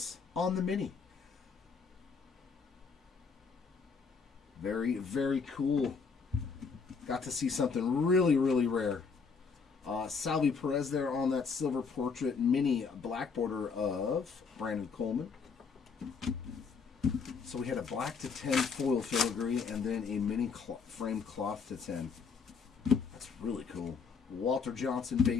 on the mini. Very, very cool. Got to see something really, really rare. Salvi Perez there on that silver portrait mini black border of Brandon Coleman. So we had a black to 10 foil filigree and then a mini framed cloth to 10. That's really cool. Walter Johnson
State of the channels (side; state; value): right; quieter; 5.4 dB